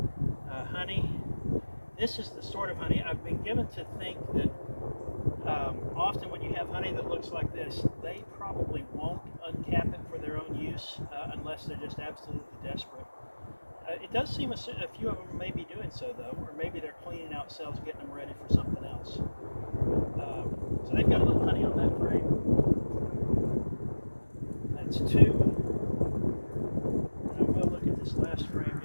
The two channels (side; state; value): both; inverted; correlation -1.00